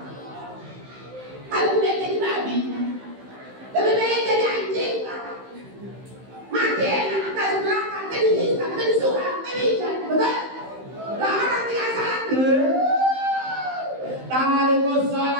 Kalau udah jadi babi lebih baik jadi anjing. Mati enak, atas neraka, terhisap, tersurat, terikat, betul? Lah orang tinggal salat. Tarikus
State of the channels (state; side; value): late; left; 15 ms